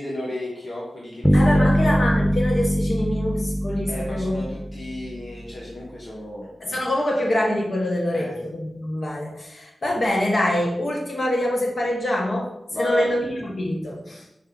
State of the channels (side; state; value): both; normal; correlation 0.94